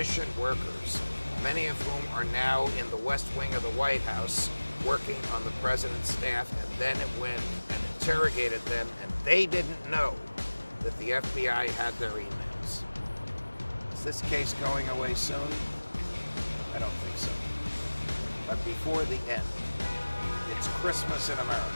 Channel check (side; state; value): both; inverted; correlation -1.00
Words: workers, many of whom are now in the West Wing of the White House working on the president's staff, and then it went and interrogated them, and they didn't know that the FBI had their emails. Is this case going away soon? I don't think so. But before the end, it's Christmas in America.